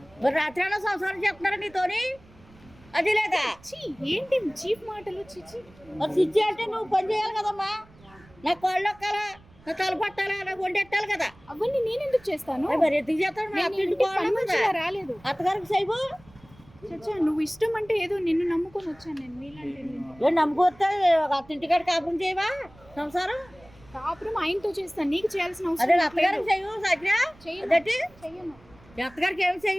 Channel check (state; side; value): noise; right; rumble, 25 dB below the sound